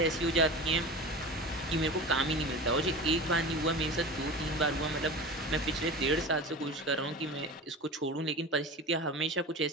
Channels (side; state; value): both; normal; correlation 0.31